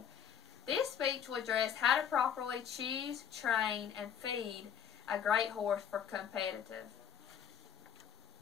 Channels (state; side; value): quieter; right; 8.5 dB